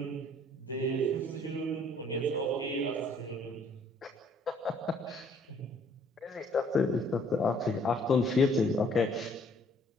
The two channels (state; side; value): normal; both; correlation 0.61